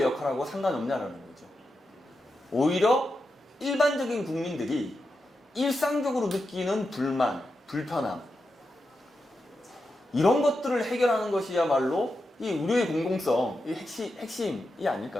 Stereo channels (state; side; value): normal; both; correlation 0.88